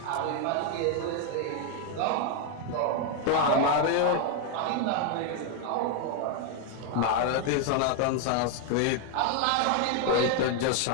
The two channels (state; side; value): different; both; correlation 0.00